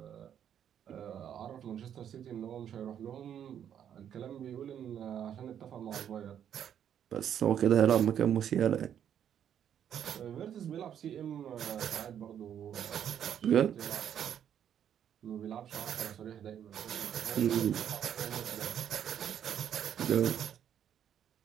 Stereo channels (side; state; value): left; quieter; 9.4 dB